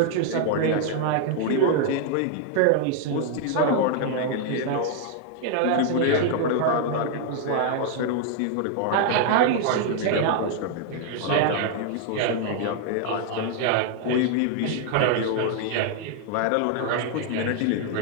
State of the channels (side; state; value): both; different; correlation 0.00